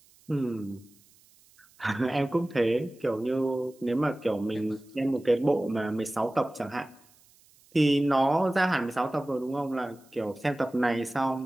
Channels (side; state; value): right; noise; hiss, 29 dB below the sound